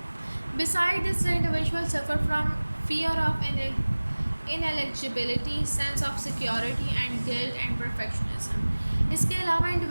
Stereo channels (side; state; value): both; inverted; correlation -1.00